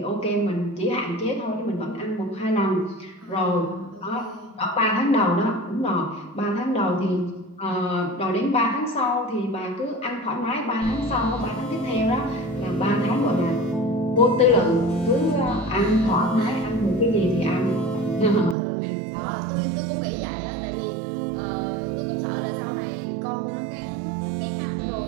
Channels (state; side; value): drops out; left; at 18.6 s